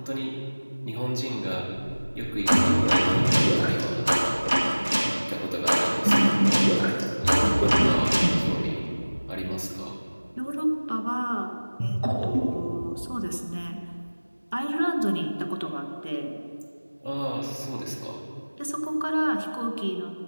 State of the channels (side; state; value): both; inverted; correlation -1.00